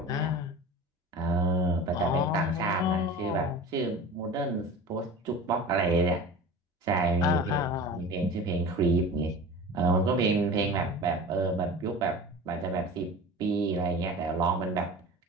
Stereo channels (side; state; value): both; normal; correlation 0.35